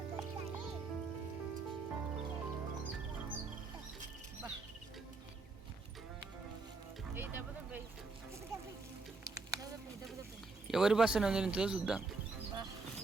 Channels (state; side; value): quieter; left; 3.9 dB